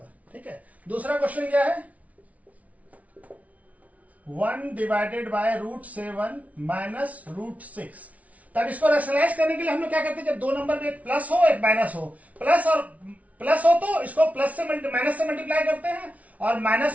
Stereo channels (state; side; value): late; left; 0.068 ms